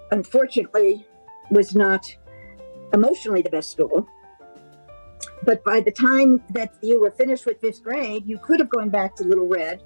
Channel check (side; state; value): both; inverted; correlation -1.00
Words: unfortunately was not emotionally the best school. But by the time that you were finished with 5th grade, you could have gone back to Little Red,